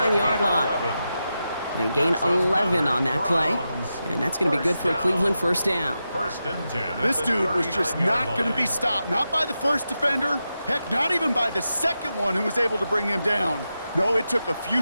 line. They gain 11 on that play, and that's going to be good for a Cleveland first down. First and 10. This dude was just not going to be stopped, not by the first defender, heck, not even by the second one who was able to bring him down. No, it took a few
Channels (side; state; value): both; inverted; correlation -0.89